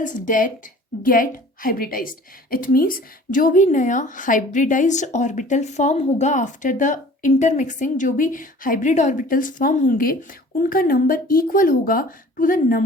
that get hybridized. It means जो भी नया hybridized orbital form होगा after the intermixing, जो भी hybrid orbitals form होंगे, उनका नंबर equal होगा to the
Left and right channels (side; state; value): both; normal; correlation 0.47